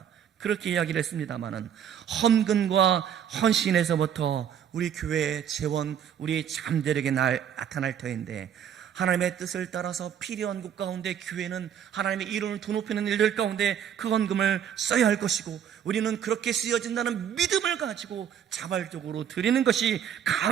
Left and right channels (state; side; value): quieter; left; 9.1 dB